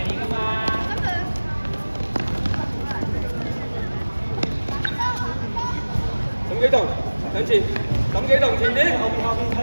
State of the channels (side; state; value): both; inverted; correlation -1.00